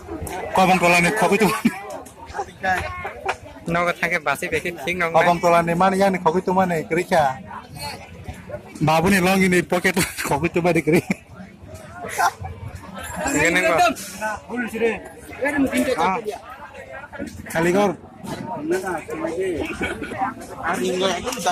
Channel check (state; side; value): identical; both; correlation 1.00